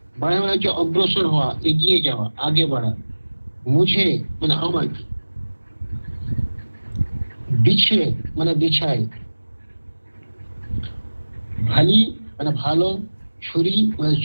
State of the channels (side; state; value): both; inverted; correlation -1.00